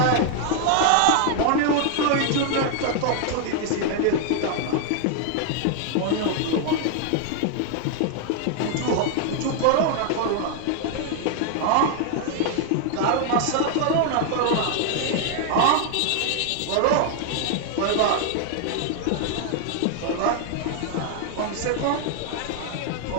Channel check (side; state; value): both; different; correlation 0.00